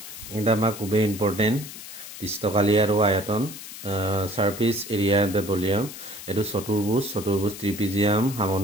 এটা আমাৰ খুবেই ইম্পৰ্টেণ্ট পৃষ্ঠকালি আৰু আয়তন সাৰফেস এৰিয়া দ্য ভলিউম। এইটো চতুৰ্ভুজ ত্ৰিপিজিয়াম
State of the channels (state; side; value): noise; left; hiss, 13 dB below the sound